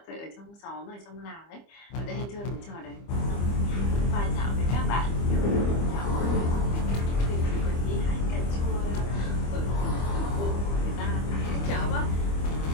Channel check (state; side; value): late; right; 25 ms